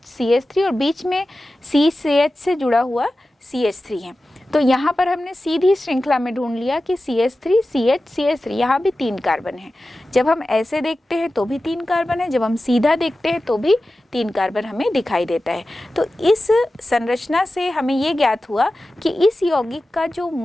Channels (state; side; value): normal; both; correlation 0.94